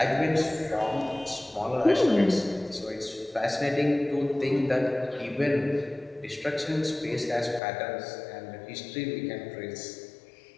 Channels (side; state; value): right; drops out; at 7.6 s